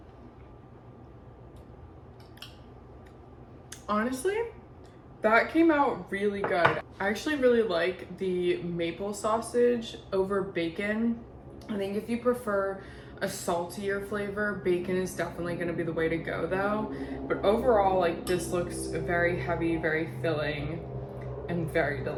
Honestly, that came out really good. I actually really like the maple sausage over bacon. I think if you prefer a saltier flavor, bacon is definitely gonna be the way to go though. But overall, like, this looks very heavy, very filling, and very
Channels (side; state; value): both; identical; correlation 1.00